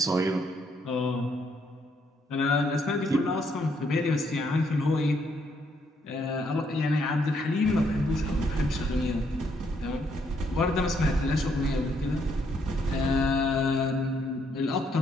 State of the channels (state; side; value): normal; both; correlation 0.72